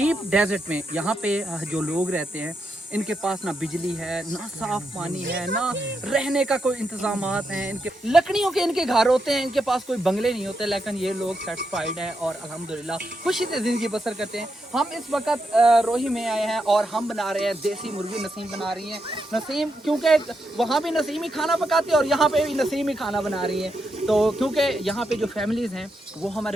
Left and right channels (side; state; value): both; normal; correlation 0.83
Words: डेजर्ट में। यहाँ पे जो लोग रहते हैं इनके पास ना बिजली है, ना साफ पानी है, ना रहने का कोई इंतजामात हैं इनके। लकड़ियों के इनके घर होते हैं, इनके पास कोई बंगले नहीं होते, लेकिन ये लोग सेटिस्फाइड हैं और अल्हम्दुलिल्लाह खुशी से ज़िंदगी बसर करते हैं। हम इस वक्त रोही में आए हैं और हम बना रहे हैं देसी मुर्गी। नसीम बना रही हैं, नसीम क्योंकि वहाँ भी नसीम ही खाना पकाती है और यहाँ पे भी नसीम ही खाना बना रही हैं। तो क्योंकि यहाँ पे जो फैमिलीज़ हैं वो